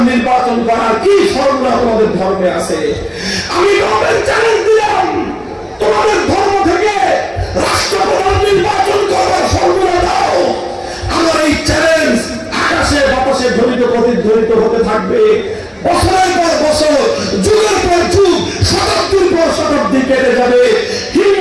নির্বাচন করার কি ফর্মুলা তোমাদের ধর্মে আছে? আমি তোমাদের চ্যালেঞ্জ দিলাম, তোমাদের ধর্ম থেকে রাষ্ট্রপ্রধান নির্বাচন করার ফর্মুলা দাও। আমার এই চ্যালেঞ্জ আকাশে বাতাসে ধ্বনিত প্রতিধ্বনিত হতে থাকবে। বছরের পর বছর, যুগের পর যুগ, শতাব্দীর পর শতাব্দী কেটে যাবে।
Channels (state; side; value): identical; both; correlation 1.00